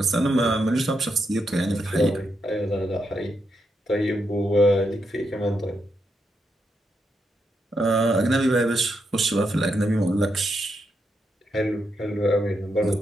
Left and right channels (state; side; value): normal; both; correlation 0.82